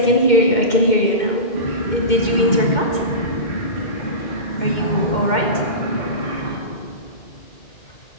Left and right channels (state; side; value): late; right; 2.1 ms